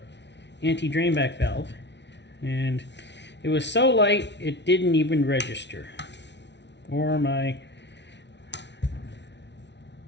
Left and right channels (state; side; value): late; right; 0.51 ms